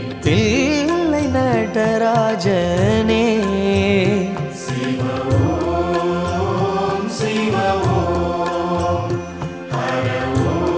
தில்லை நடராஜனே சிவ ஓம் சிவ ஓம் ஹர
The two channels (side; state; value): both; identical; correlation 1.00